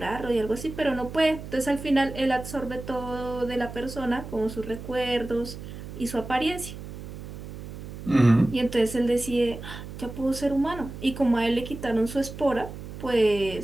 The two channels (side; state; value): right; noise; hum, 11 dB below the sound